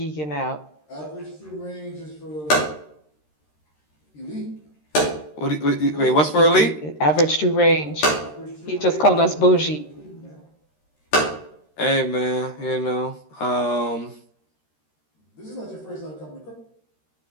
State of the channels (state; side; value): late; right; 13 ms